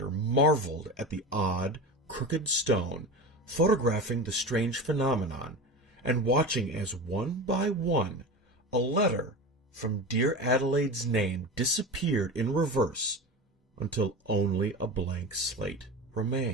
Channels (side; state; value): both; normal; correlation 0.27